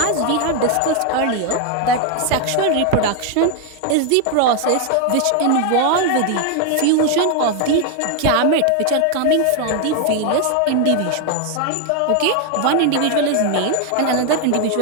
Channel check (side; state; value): both; different; correlation 0.00